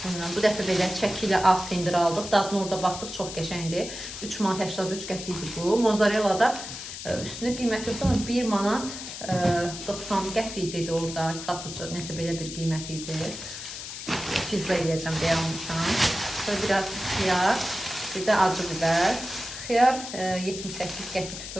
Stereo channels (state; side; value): noise; left; hiss, 9 dB below the sound